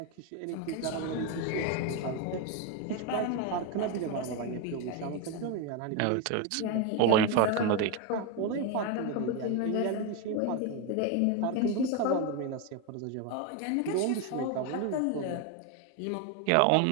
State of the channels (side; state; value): both; different; correlation 0.02